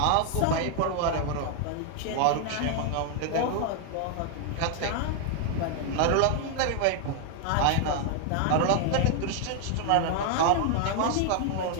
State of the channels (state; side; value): different; both; correlation 0.00